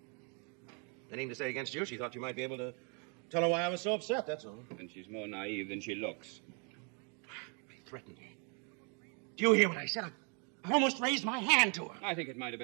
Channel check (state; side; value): quieter; left; 36.6 dB